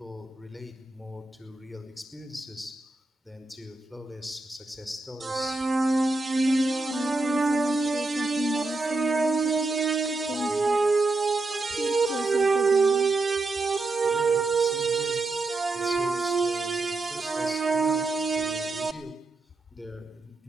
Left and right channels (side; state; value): left; quieter; 3.2 dB